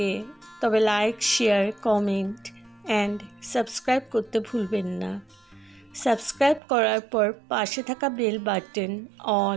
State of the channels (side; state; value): left; drops out; at 6.6 s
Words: তবে like, share, comment and subscribe করতে ভুলবেন না। সাবস্ক্রাইব করার পর পাশে থাকা বেল বাটন